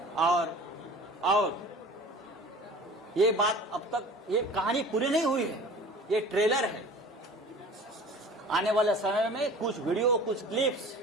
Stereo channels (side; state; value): both; normal; correlation 0.42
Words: और ये बात अब तक, ये कहानी पूरी नहीं हुई है, ये ट्रेलर है। आने वाले समय में कुछ वीडियो, कुछ क्लिप्स